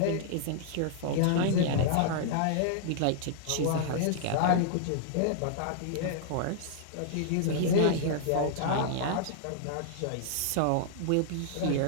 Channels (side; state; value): both; different; correlation -0.01